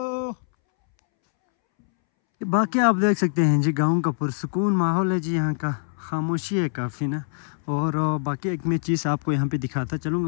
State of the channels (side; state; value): right; silent; 63 dB below the other